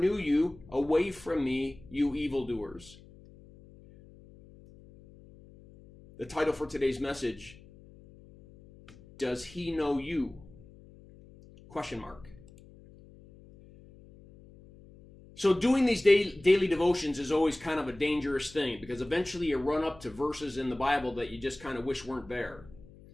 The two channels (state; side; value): noise; left; hum, 22 dB below the sound